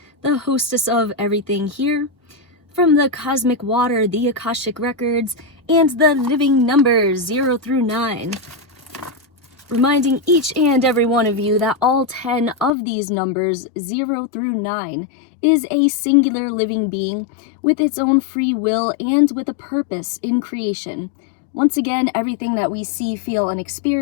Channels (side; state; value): right; drops out; at 12.7 s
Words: the hostess of everything here, from the cosmic water, the Akashic records, and the living numbers 0 through 9. Reminding each and every one of you that all 10 of these numbers, 0 through 9, is a singular living being with its own free will and with a purpose in creation. Once again, everything that we see, feel, and